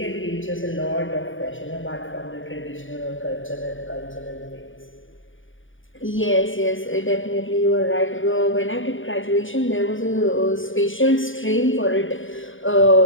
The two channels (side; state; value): right; late; 0.57 ms